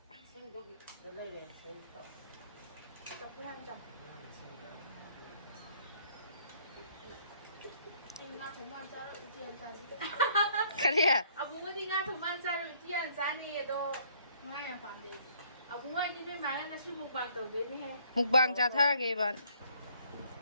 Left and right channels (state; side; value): inverted; both; correlation -0.62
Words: ꯀꯔꯤ ꯑꯕꯨꯡꯉꯣꯗꯤ ꯉꯥ ꯊꯣꯡꯕ ꯆꯥꯔꯣꯏ ꯎꯇꯤ ꯌꯥꯝ ꯆꯥꯅꯤꯌꯦ ꯑꯗꯣ ꯉꯥ ꯌꯥꯝ ꯄꯥꯝꯗꯦ ꯑꯕꯨꯡꯉꯣ ꯑꯩꯗꯤ ꯅꯣꯏ ꯃꯥꯒ ꯉꯁꯤ ꯃꯨꯛꯕꯥꯡ ꯇꯧꯗꯣꯏꯅꯦꯍꯦ ꯃꯨꯛꯕꯥꯡ ꯆꯥꯊꯔꯒꯦ ꯏꯕꯥꯟ